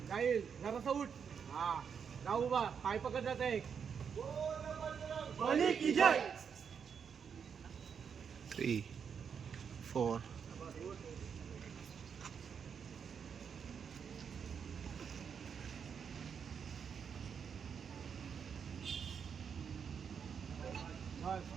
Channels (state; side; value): quieter; left; 6.9 dB